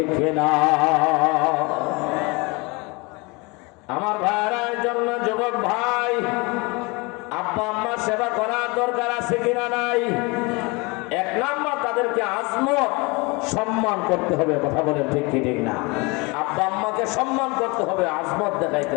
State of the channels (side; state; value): right; quieter; 27.2 dB